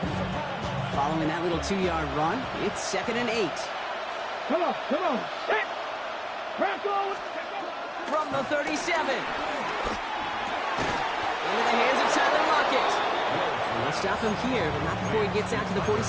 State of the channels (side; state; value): both; identical; correlation 1.00